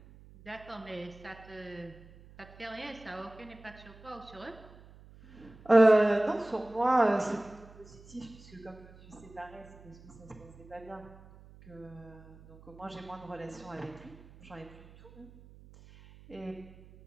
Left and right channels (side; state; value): right; noise; hum, 21 dB below the sound